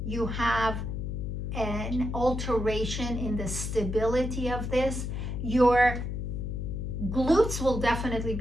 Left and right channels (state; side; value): noise; left; hum, 3 dB below the sound